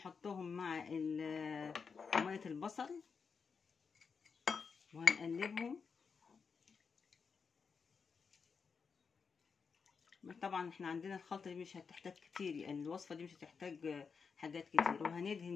مع مية البصل وهنقلبهم. طبعا احنا عندنا الخلطة دي مش هتحتاج كتير، يعني الوصفة دي مش هتحتاج حاجات كتير،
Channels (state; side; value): quieter; right; 5.6 dB